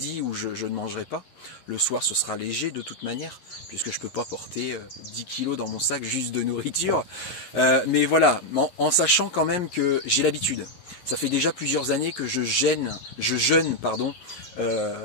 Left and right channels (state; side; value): late; right; 11 ms